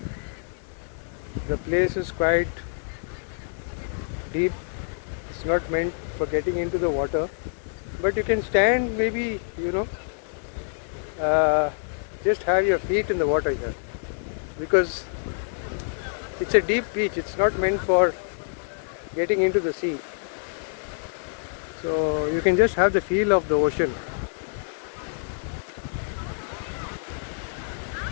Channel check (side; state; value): right; silent; 61 dB below the other